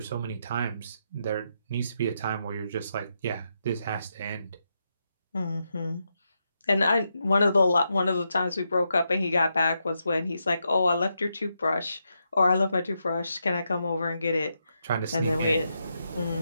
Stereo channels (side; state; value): both; inverted; correlation -0.83